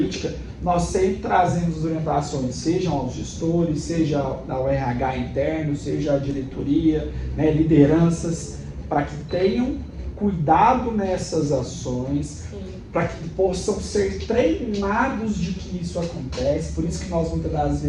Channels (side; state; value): both; identical; correlation 1.00